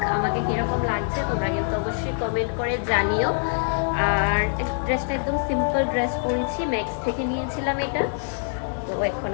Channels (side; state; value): right; silent; digital silence